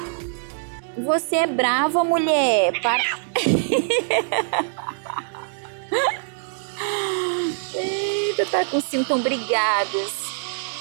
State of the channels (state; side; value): silent; left; digital silence